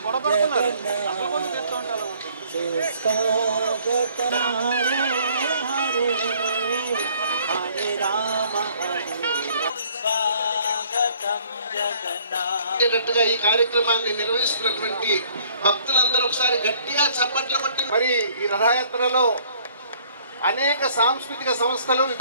ఈ కార్యక్రమాన్ని నిర్వహిస్తున్నటువంటి భక్తులందరూ ఒకసారి గట్టిగా చప్పట్లు కొట్టి, మరి ఈ రథయాత్రలో అనేక సాంస్కృతిక సంస్థలు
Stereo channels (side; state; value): both; inverted; correlation -0.59